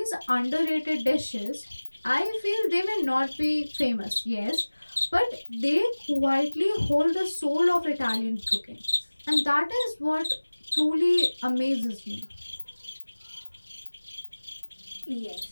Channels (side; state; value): both; inverted; correlation -1.00